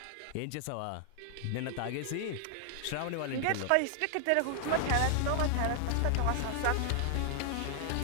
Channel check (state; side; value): different; both; correlation 0.00